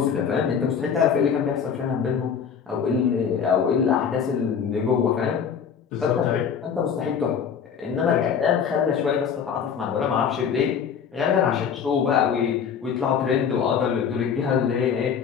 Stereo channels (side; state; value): right; quieter; 7.2 dB